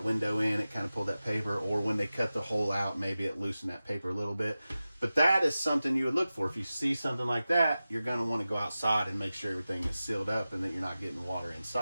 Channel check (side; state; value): both; inverted; correlation -0.95